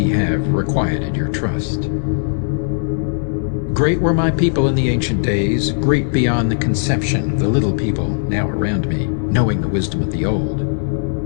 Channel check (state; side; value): silent; right; digital silence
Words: have requited your trust. Great were my people in the ancient days, great beyond the conception of the little people now around me, knowing the wisdom of the old,